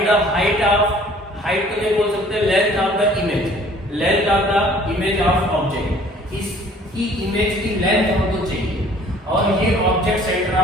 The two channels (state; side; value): normal; both; correlation 0.54